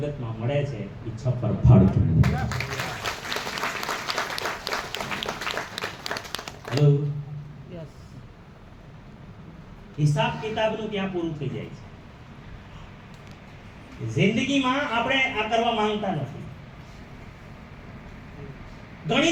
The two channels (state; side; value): identical; both; correlation 1.00